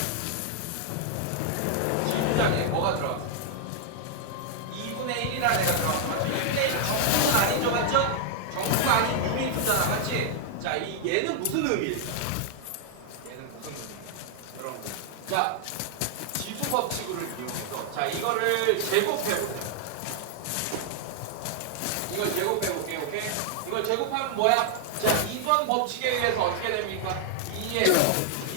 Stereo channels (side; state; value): both; different; correlation 0.00